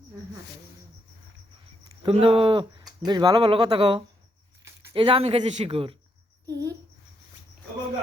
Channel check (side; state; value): both; normal; correlation 0.78